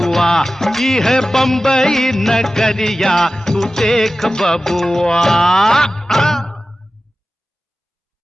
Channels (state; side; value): normal; both; correlation 0.95